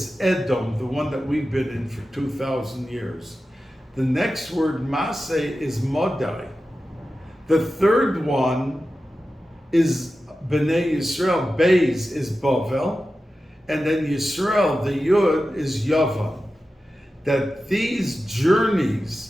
Edom, the one that we've been in for 2,000 years. The next word, Massei, is Modai. The third one is B'nai Yisrael. Beis is Bavel. And then Yisrael, the Yud, is Yavan. That these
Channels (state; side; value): normal; both; correlation 0.93